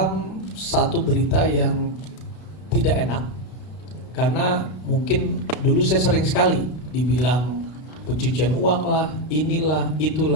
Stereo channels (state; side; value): late; right; 32 ms